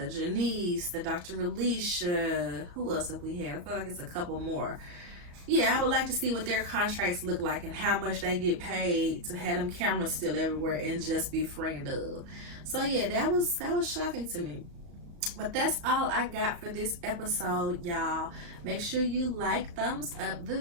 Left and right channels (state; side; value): late; left; 35 ms